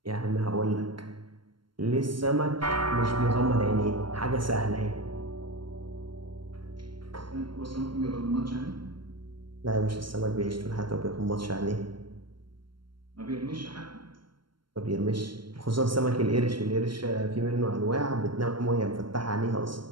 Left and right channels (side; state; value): left; late; 0.72 ms